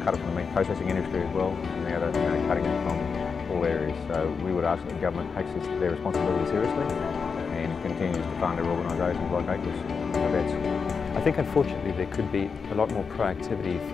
it from the meat processing industry as well, and now they're cutting it from all areas. So we would ask that the government takes their responsibility seriously and continues to fund their organisations like AQIS and the vets. I think unfortunately there could be a lot more proactivity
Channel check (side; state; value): right; quieter; 5.5 dB